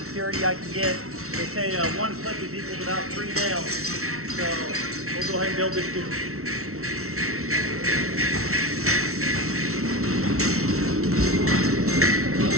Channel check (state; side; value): late; left; 0.63 ms